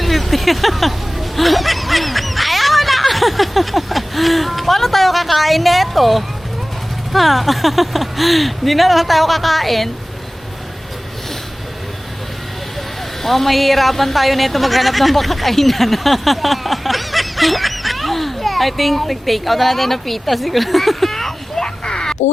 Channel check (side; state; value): both; normal; correlation 0.98